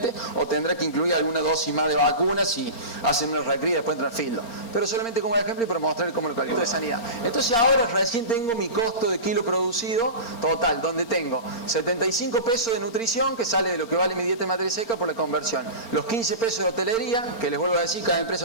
o tendrá que incluir alguna dosis más de vacunas si hacen una recría y después entran filo. Pero solamente como ejemplo y para mostrar cómo lo calculo de sanidad. Entonces ahora recién tengo mi costo de kilo producido total, donde tengo 75 pesos de nutrición, que sale de lo que vale mi dieta de materia seca por la conversión, los 15 pesos de hotelería, que les vuelvo a decir, cada empresa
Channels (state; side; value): late; right; 4.4 ms